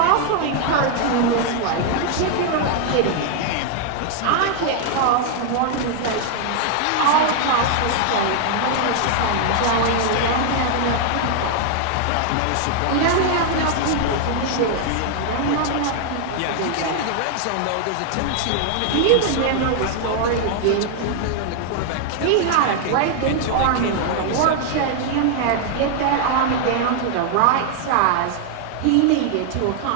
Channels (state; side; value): different; both; correlation 0.00